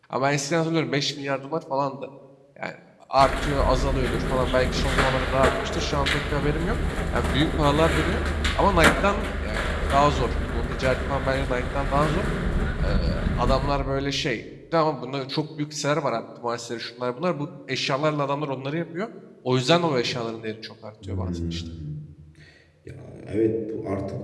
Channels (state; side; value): identical; both; correlation 1.00